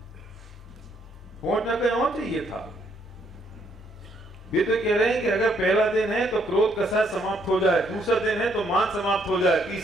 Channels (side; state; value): both; normal; correlation 0.70